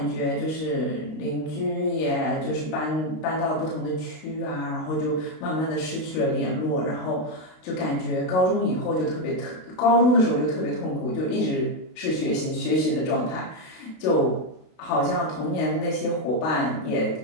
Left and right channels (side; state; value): right; late; 32 ms